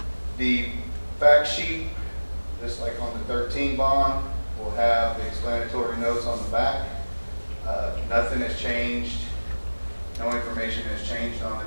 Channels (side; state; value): both; inverted; correlation -1.00